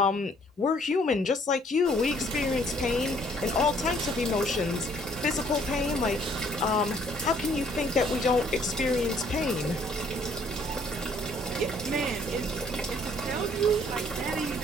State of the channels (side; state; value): both; normal; correlation 0.62